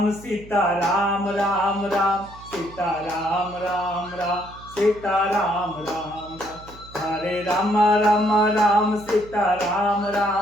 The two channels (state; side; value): noise; right; hum, 19 dB below the sound